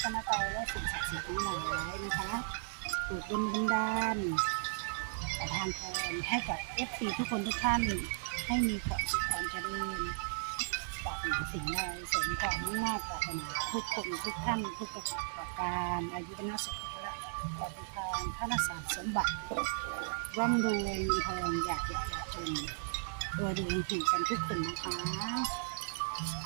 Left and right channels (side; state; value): left; silent; digital silence